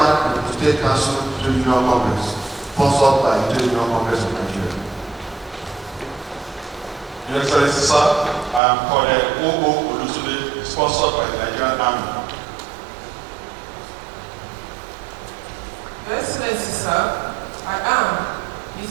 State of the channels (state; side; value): drops out; left; at 8.6 s